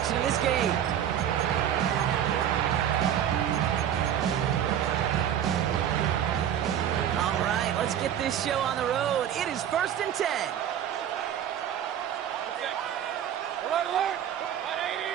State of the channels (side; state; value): left; quieter; 10.0 dB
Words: of this game. All right, let's get this show on the road. It is 1st and 10.